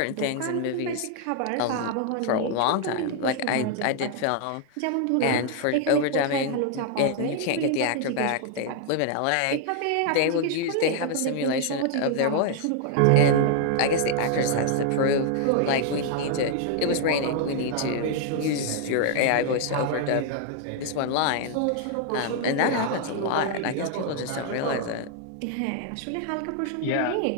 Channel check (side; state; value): both; different; correlation 0.00